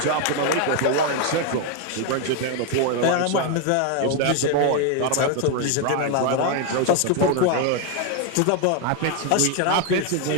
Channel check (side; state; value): both; different; correlation 0.01